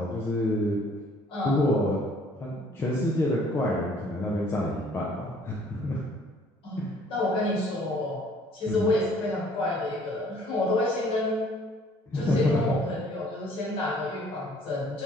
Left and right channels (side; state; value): both; normal; correlation 0.58